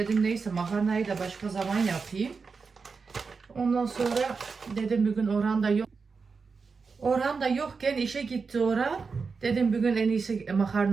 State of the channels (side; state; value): left; quieter; 4.9 dB